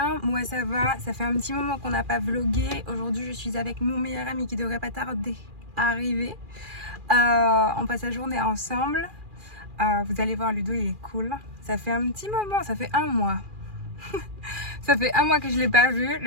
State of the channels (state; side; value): late; left; 2.4 ms